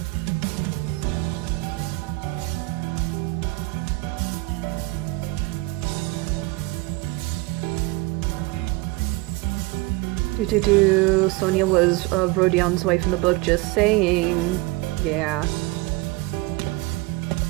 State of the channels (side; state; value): left; quieter; 21.3 dB